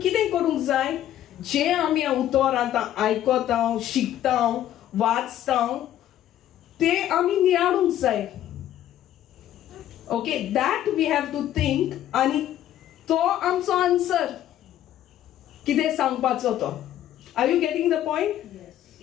करूंक जाय? जे आमी उतर आतां आयकता, शिकता, वाचता, ते आमी नियाळूंक जाय. Okay, that we have to think, आनी तो आमचो आन्सर कितें सांगपाचो तो. Are you getting the point?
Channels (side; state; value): right; quieter; 12.1 dB